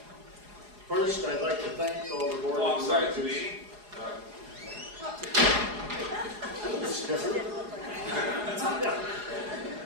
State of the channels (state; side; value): late; left; 4.8 ms